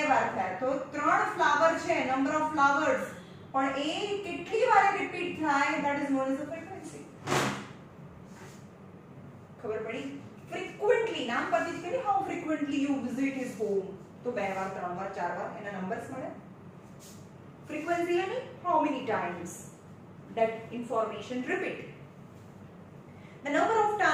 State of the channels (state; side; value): identical; both; correlation 1.00